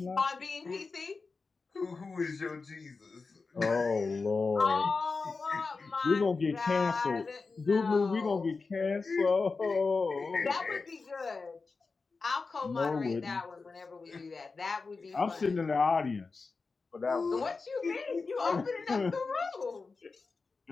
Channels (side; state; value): right; quieter; 4.3 dB